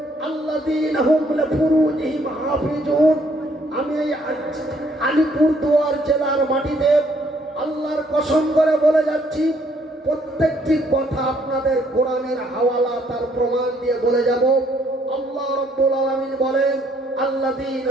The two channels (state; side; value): normal; both; correlation 0.67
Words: আল্লাযীনা হুম লিফুরুজিহিম হাফিজুন। আমি এই আলিপুরদুয়ার জেলার মাটিতে আল্লাহর কসম করে বলে যাচ্ছি, প্রত্যেকটি কথা আপনাদের কোরআনের হাওয়ালা তার প্রমাণ দিয়ে বলে যাব। আল্লাহ রাব্বুল আলামিন বলেন,